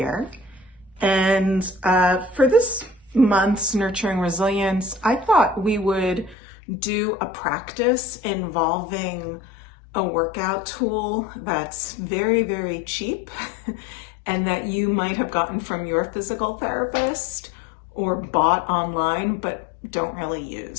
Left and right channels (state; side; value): drops out; right; at 6.4 s